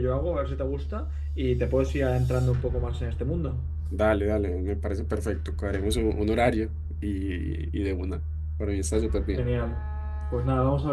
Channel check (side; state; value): both; identical; correlation 1.00